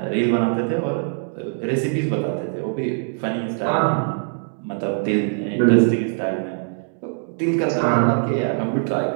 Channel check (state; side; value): silent; left; 64 dB below the other